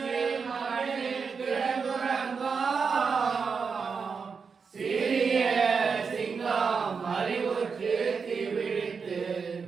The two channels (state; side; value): quieter; left; 5.5 dB